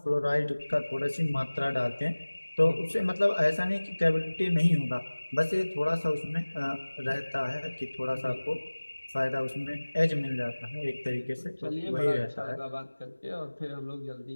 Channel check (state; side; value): inverted; both; correlation -1.00